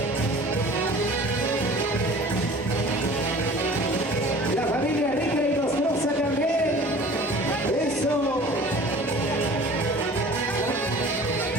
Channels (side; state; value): both; normal; correlation 0.45